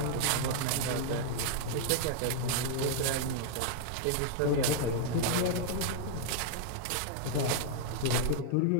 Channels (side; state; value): both; different; correlation -0.01